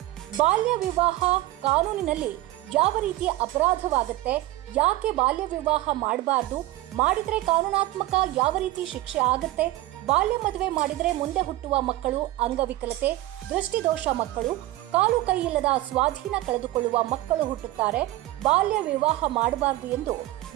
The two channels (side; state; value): left; quieter; 16.7 dB